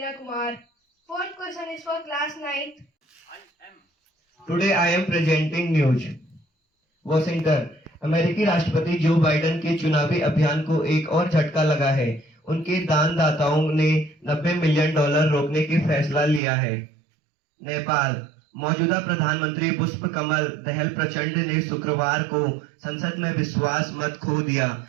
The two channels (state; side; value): drops out; left; at 16.4 s